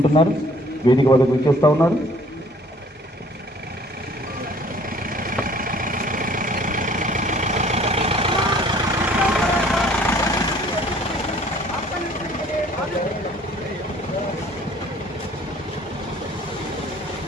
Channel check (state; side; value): normal; both; correlation 0.56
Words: వేదిక వద్దకు వచ్చేస్తా ఉన్నారు.